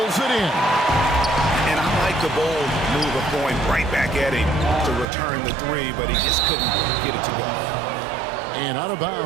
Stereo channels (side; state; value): left; drops out; at 5.1 s